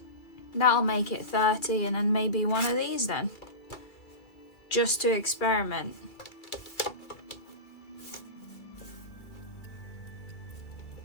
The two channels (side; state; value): right; late; 2.4 ms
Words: That'll make it 30, and then maybe one of these then. Just to experiment.